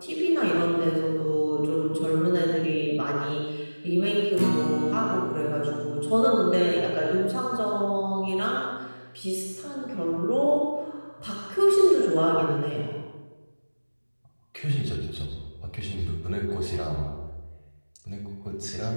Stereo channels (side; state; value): both; inverted; correlation -1.00